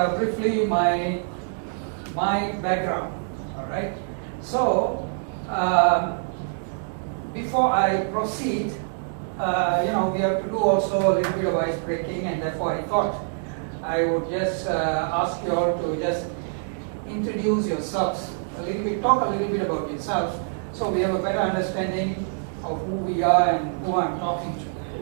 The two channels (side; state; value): left; silent; digital silence